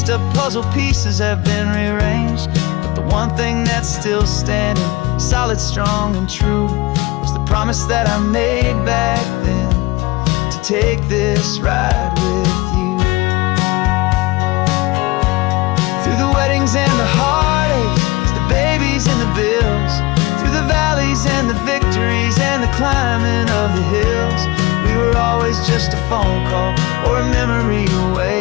up puzzle pieces have been rearranged. But the one thing that's still standing, solid, strong, and true, was the promise that I made back then, to take this ride with you. Through the weddings and the heartaches, the babies and the bills, through the valleys and the victories and the climbing of the hills, we were always just a phone call or a memory away,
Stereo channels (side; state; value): right; quieter; 22.0 dB